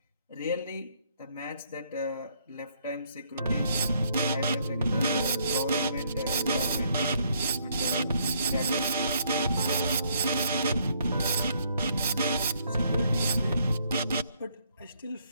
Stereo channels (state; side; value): inverted; both; correlation -0.69